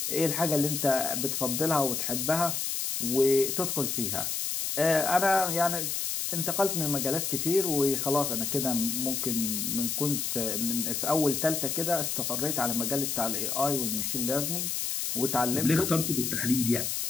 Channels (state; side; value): noise; left; hiss, 1 dB below the sound